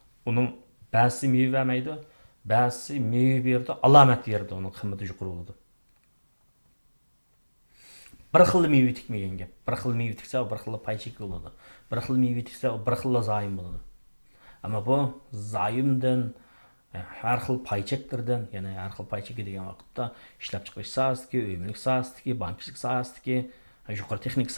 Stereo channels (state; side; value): inverted; both; correlation -1.00